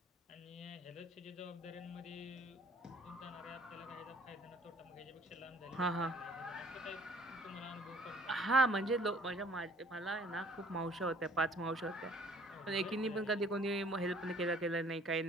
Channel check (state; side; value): normal; both; correlation 0.55